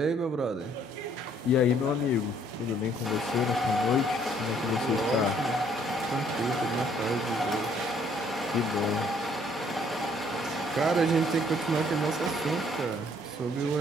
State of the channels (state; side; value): normal; both; correlation 0.63